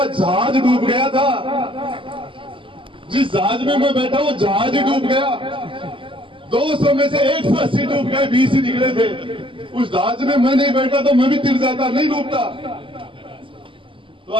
जहाज डूब गया था। जिस जहाज में मैं बैठा वो जहाज ही डूब गया। 200 में से 180 डूब गए, 20 ही निकले थे। उस जहाज में मैं नहीं बैठा तो मैं भी तिर जाता, नहीं डूबता। तो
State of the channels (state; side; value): late; left; 0.25 ms